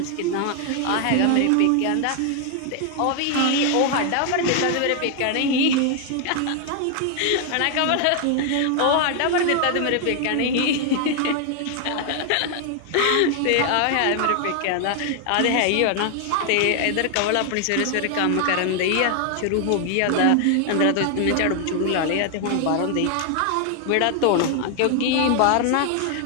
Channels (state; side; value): different; both; correlation 0.00